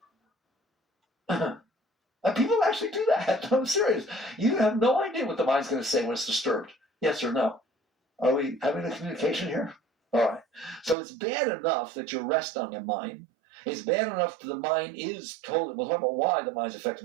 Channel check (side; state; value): left; drops out; at 11.0 s